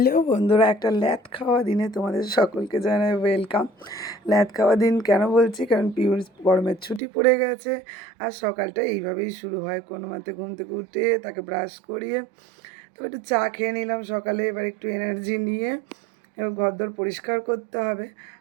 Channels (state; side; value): drops out; left; at 7.0 s